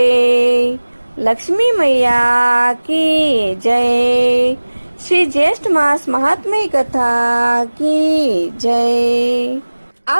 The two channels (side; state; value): both; inverted; correlation -1.00